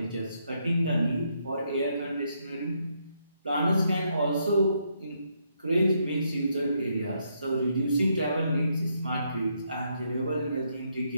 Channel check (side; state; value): both; inverted; correlation -0.76